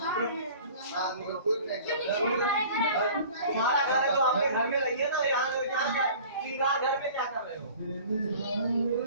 हाँ निकल कोई नहीं तुम्हारा घर है तो आपके घर में रहिए ना यहाँ क्या श्रृंगार घर में क्या कर रहे हो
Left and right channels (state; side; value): inverted; both; correlation -0.45